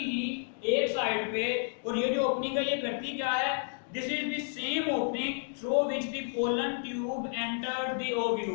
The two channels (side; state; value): right; silent; 57 dB below the other